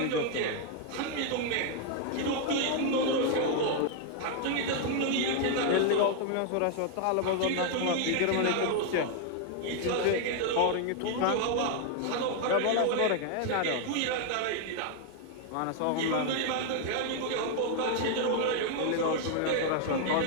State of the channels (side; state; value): both; different; correlation 0.00